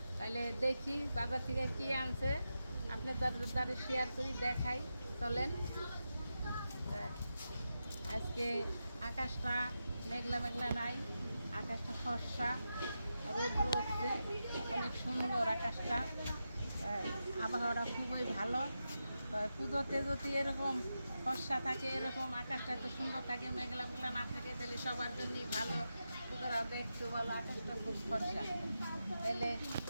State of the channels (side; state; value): both; inverted; correlation -0.89